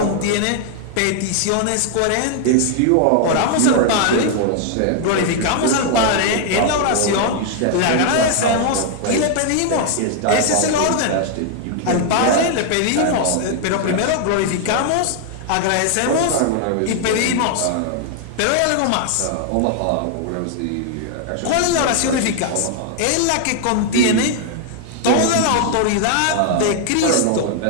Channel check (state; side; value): different; both; correlation 0.00